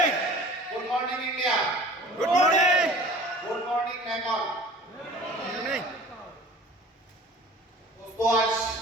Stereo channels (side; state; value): both; normal; correlation 0.44